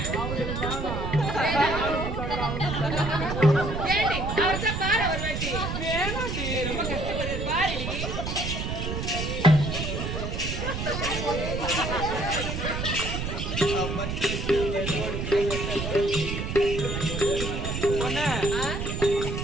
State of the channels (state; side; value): noise; right; rumble, 3 dB below the sound